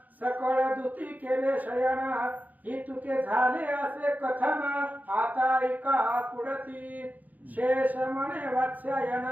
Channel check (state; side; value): late; left; 0.080 ms